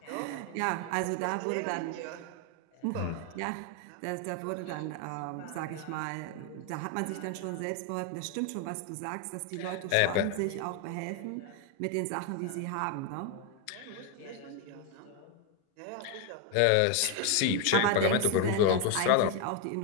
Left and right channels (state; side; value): different; both; correlation 0.01